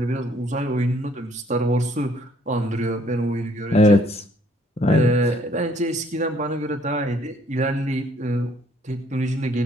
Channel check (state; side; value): normal; both; correlation 0.64